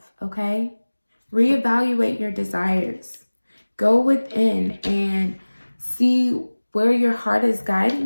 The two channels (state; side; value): inverted; both; correlation -1.00